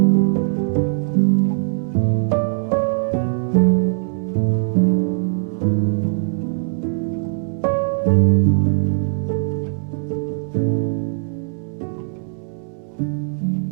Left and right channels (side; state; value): left; silent; digital silence